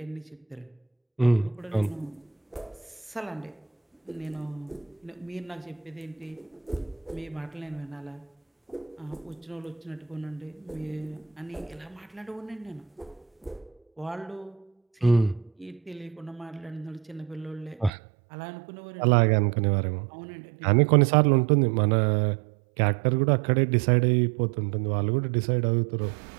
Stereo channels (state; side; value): drops out; left; at 17.9 s